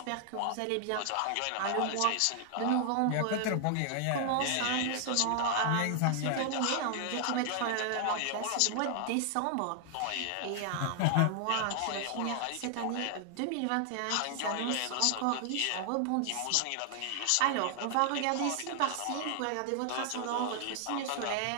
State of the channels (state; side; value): different; both; correlation 0.00